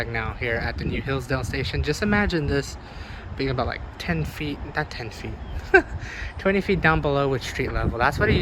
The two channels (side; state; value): both; identical; correlation 1.00